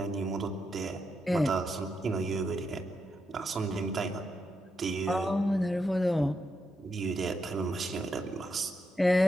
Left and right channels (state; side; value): normal; both; correlation 0.83